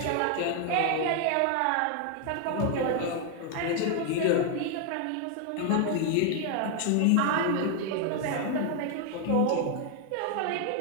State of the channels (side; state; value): both; different; correlation 0.00